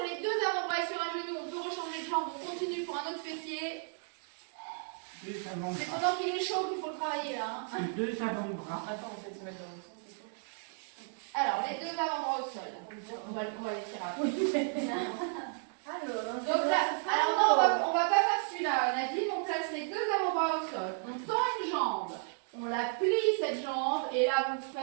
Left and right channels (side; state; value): left; silent; 55 dB below the other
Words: les deux avant-bras et sur un genou, on peut rechanger de jambe, on continue pour un autre fessier. Deux C'est avant-bras. pendant qu'il est chaud qu'il faut le travailler là. Hein. Deux avant-bras. Attends, on fait se mettre dans le sens, c'est tout. Alors, les deux avant-bras au sol. On va les tirer après. Donc là, alors non, on va pas faire celui-là, Nadine, on place les deux avant-bras au sol, on tend une jambe, on la plie cette jambe, et là vous